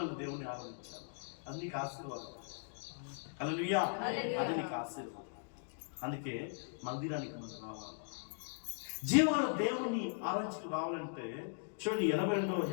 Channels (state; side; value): silent; right; digital silence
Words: దేవుని ఆరాధించాలి, అది నీకు ఆశీర్వాదం. హల్లెలూయా. అది నీకు ఆశీర్వాదం. అందుకే మందిరానికి మనం రావాలి. జీవగల దేవుణ్ణి ఆరాధించుకు రావాలంటే చూడండి,